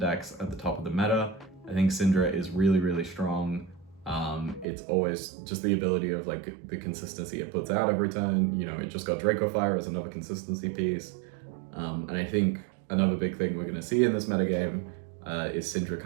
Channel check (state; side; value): drops out; left; at 4.7 s